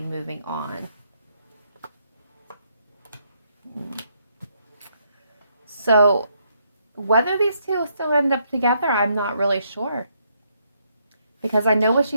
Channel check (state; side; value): inverted; both; correlation -0.75